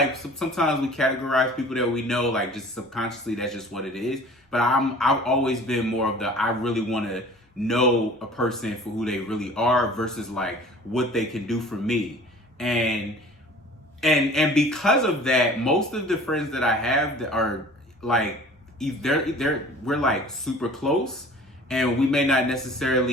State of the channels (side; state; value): both; normal; correlation 0.46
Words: sometimes we categorize people that we know, like just subconsciously, that's just what it is. But I've always been more of the, I really want to know a person for who they really are versus like what they can do for me. And because of that, most of the friends that I have that are like, we're like super close, and we may not